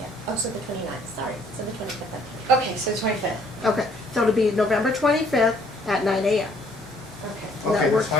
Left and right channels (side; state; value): both; normal; correlation 0.62